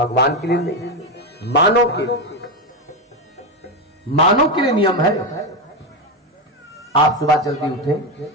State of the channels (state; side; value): normal; both; correlation 0.11